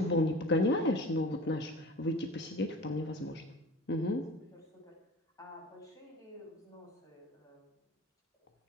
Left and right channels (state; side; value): normal; both; correlation 0.40